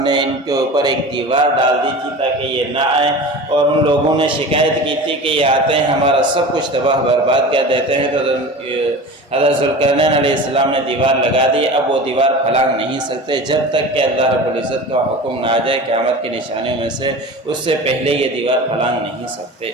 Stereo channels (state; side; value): normal; both; correlation 0.34